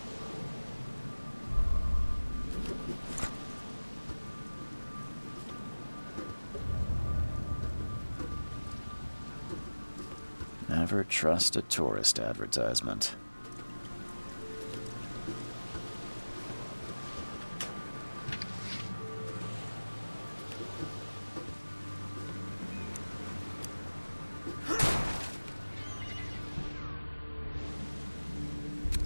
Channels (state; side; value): inverted; both; correlation -1.00